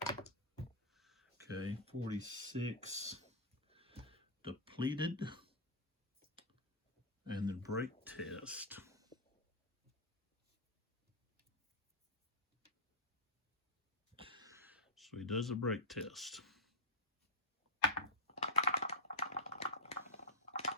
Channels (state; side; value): normal; both; correlation -0.05